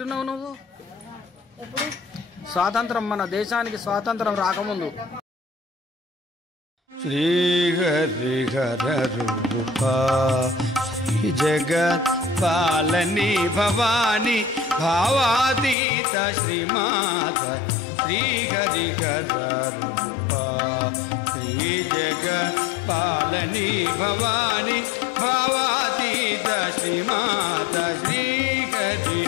నువ్వు? స్వాతంత్రం, మన దేశానికి స్వాతంత్రం రాకముందు. శ్రీహరిహర రూపా శ్రీ జగత్ పాలని భవాని భావాతీత శ్రీమాత శ్రీహరిహర రూపా శ్రీ జగత్ పాలని భవాని భావాతీత శ్రీమాత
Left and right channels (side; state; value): right; drops out; at 15.8 s